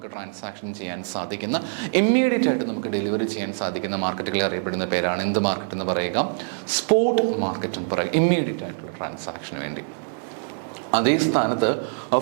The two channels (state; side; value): silent; left; digital silence